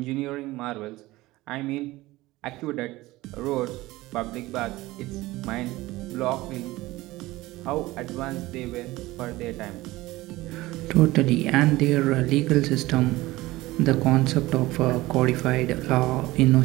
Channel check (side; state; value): left; quieter; 18.8 dB